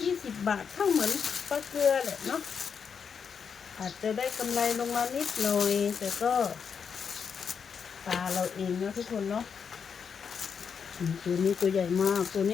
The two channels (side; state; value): right; quieter; 6.5 dB